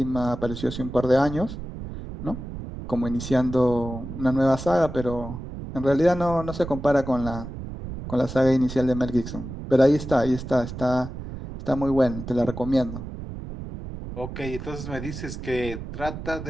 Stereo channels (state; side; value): noise; right; rumble, 9 dB below the sound